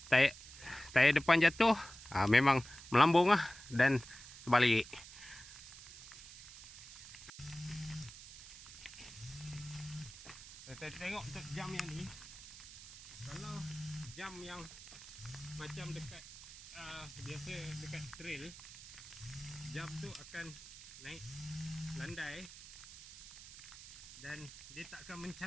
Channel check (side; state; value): right; noise; hiss, 15 dB below the sound